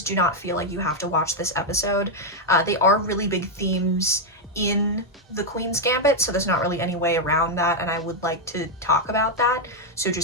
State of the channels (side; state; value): both; normal; correlation 0.01